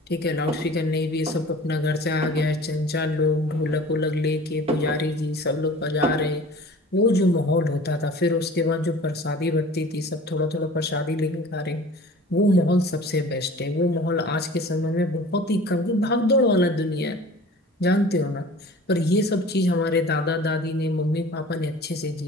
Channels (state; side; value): normal; both; correlation 0.43